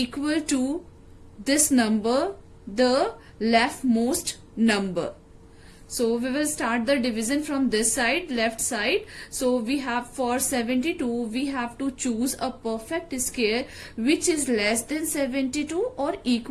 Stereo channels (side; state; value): both; identical; correlation 1.00